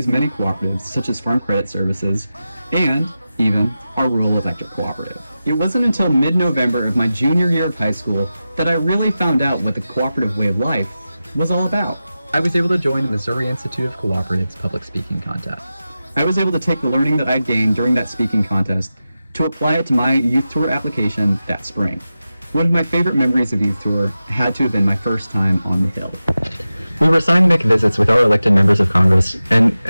many cooperatives, such as Farm Credit Services, and even our rural electric cooperative. It wasn't until mid-November of my junior year of high school that I really found out what the cooperative way of life was all about. I was able to join the Missouri Institute of Cooperatives public speaking contest. I was able to take the learning that I gained during that speaking contest to apply it to my youth tour application that spring. One of my favorite memories of youth tour had to have been my first time on the Hill. We were assigned to make visits with our elected members of Congress, and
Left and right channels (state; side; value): inverted; both; correlation -0.93